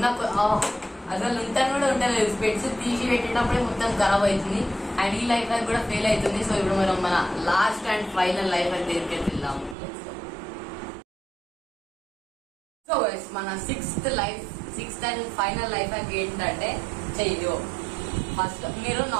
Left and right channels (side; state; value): left; drops out; at 9.8 s